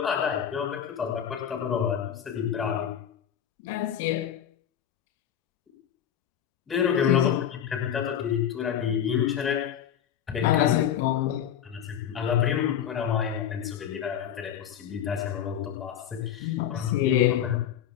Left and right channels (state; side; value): quieter; right; 9.5 dB